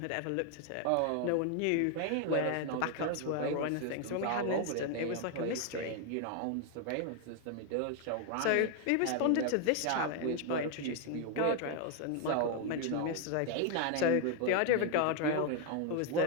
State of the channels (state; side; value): different; both; correlation 0.00